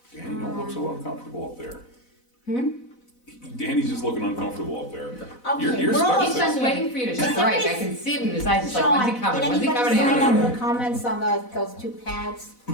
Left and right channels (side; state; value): right; late; 4.0 ms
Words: Danny, don't look so uncomfortable up there. Danny's just looking uncomfortable up there. Okay, You're we're stuck He's with just it. waiting for you to strike. I can see it in his eyes, he's like, Sean, when's he coming, did when's he anybody coming sign in? up for comments on those two pads?